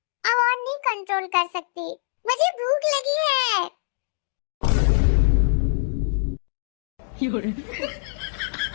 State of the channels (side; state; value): right; silent; digital silence